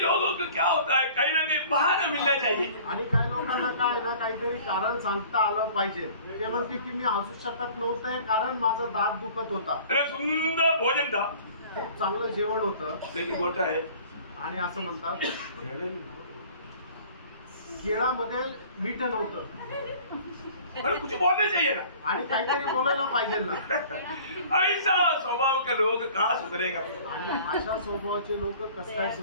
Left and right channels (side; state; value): both; inverted; correlation -0.48